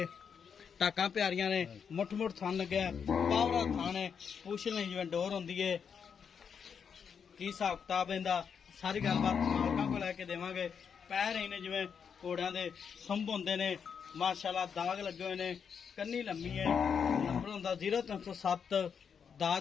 टाका प्यारियां ने, मुठ मुठ थान लगे पावरा थान है, पूछ नहीं जिवें डोर होंदी है। की हिसाब किताब इहदा सारी गलबात मालकां को लैके देवांगे। पैर ही ने जिवें घोड़ियां दे संभ होंदे ने। माशाल्लाह दाग लगे हुए ने, कन्नी लम्मी है। नंबर होंदा 0307 10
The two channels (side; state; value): right; quieter; 6.8 dB